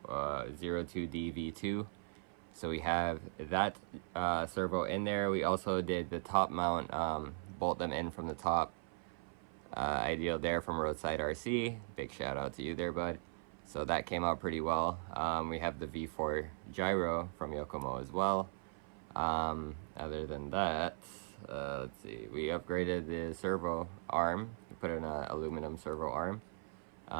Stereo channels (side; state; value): left; silent; 52 dB below the other